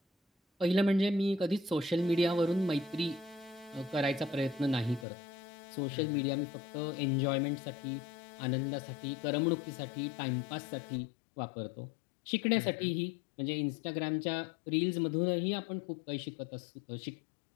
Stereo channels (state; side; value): drops out; right; at 5.1 s